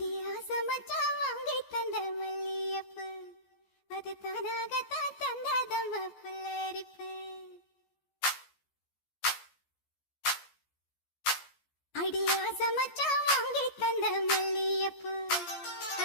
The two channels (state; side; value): late; right; 14 ms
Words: மச்சான் வாங்கி தந்த மல்லியப்பு அது தானாகத்தான் தந்ததம்ம புல்லரிப்பு. அடியாச மச்சான் வாங்கி தந்த மல்லியப்பு